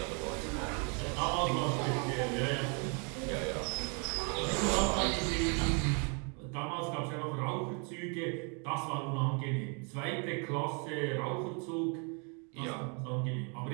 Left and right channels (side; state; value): left; quieter; 36.4 dB